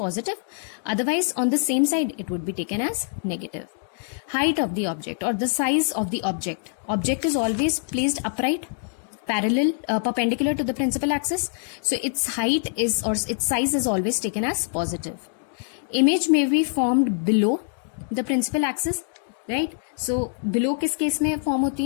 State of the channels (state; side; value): silent; right; digital silence